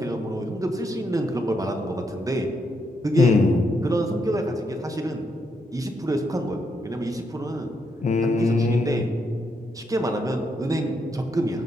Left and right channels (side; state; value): both; normal; correlation 0.79